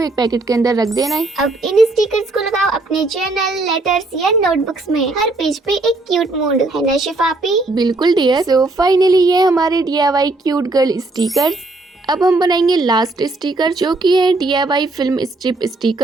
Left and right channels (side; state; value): left; quieter; 3.1 dB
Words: पैकेट के अंदर रख देना है। अब इन स्टिकर्स को लगाओ अपने जर्नल, लेटर्स या नोटबुक्स में। हर पेज पे एक क्यूट मूड है ना शिफापी? बिल्कुल डियर। सो फाइनली ये हमारे DIY क्यूट गर्ल स्टिकर्स। अब हम बनाएंगे लास्ट स्टिकर जो कि है DIY फिल्म स्ट्रिप